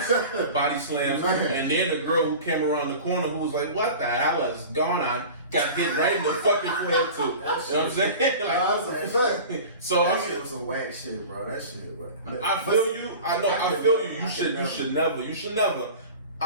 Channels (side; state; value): both; inverted; correlation -0.37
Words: body slams, and then the girl who came around the corner who was like, what the hell is going on? Got hit right in the fucking forehead too. You know what I'm saying? Like, that's a fact. So that shit was some whack shit, bro. That shit, bro. I feel you. I know. I feel you. You should never.